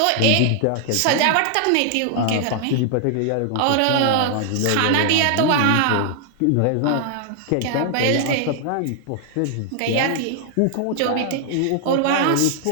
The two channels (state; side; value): different; both; correlation 0.00